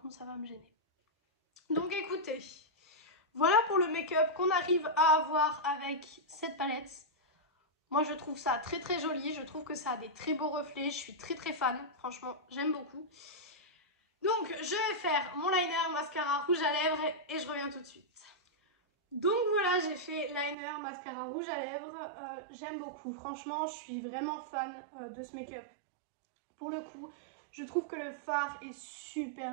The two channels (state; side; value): drops out; left; at 20.6 s